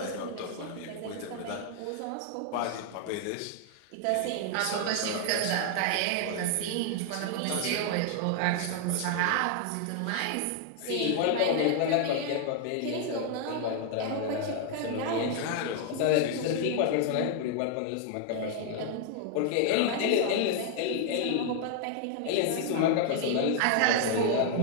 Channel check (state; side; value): different; both; correlation 0.00